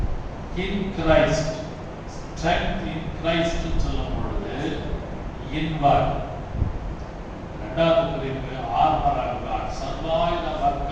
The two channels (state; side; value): identical; both; correlation 1.00